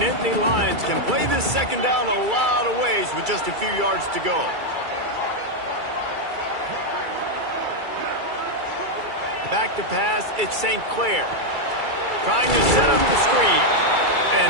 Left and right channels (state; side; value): late; left; 2.3 ms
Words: Nittany Lions can play this second down a lot of ways with just a few yards to go. Back to pass, it's St. Clair. Trying to set up the screen.